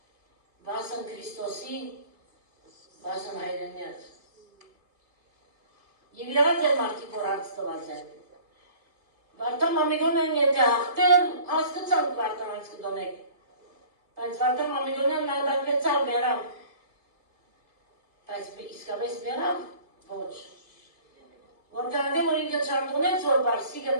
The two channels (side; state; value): left; late; 2.3 ms